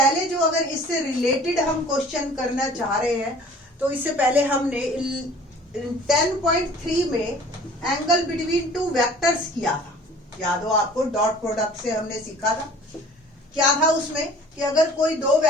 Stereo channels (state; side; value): normal; both; correlation 0.49